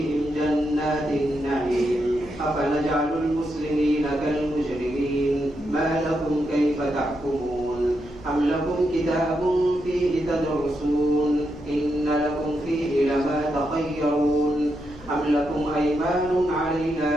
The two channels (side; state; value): left; noise; rumble, 20 dB below the sound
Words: جنات النعيم أفنجعل المسلمين كالمجرمين ما لكم كيف تحكمون أم لكم كتاب فيه تدرسون إن لكم فيه لما تخيرون أم لكم أيمان